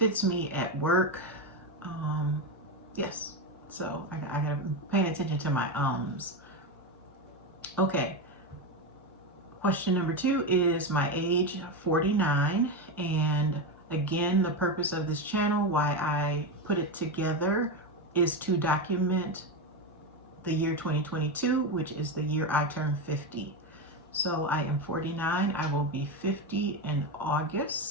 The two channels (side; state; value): both; normal; correlation 0.13